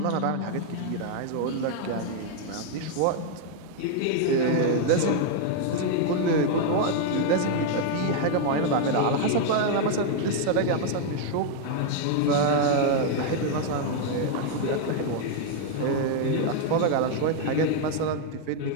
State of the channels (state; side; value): different; both; correlation 0.00